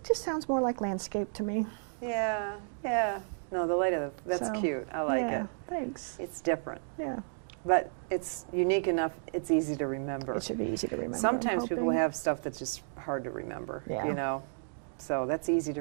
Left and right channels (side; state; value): left; silent; digital silence